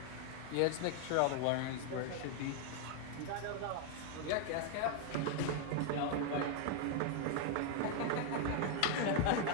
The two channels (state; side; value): different; both; correlation 0.01